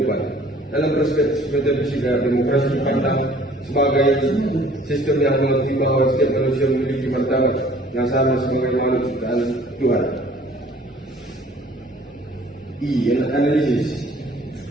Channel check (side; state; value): both; normal; correlation 0.54